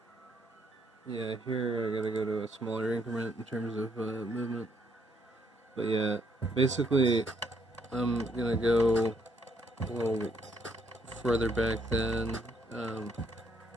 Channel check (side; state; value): both; normal; correlation 0.71